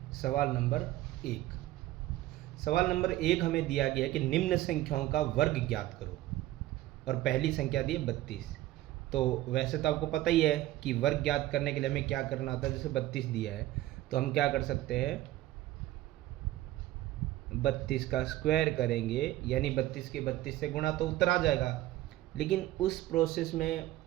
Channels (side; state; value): left; quieter; 15.6 dB